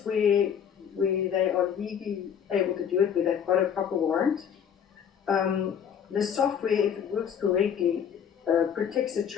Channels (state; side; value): quieter; right; 8.2 dB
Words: where they are legally able to do it, where they've got a proper warrant, the software, if it works correctly, protects a